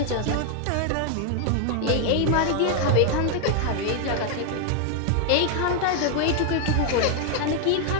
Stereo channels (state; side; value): different; both; correlation 0.00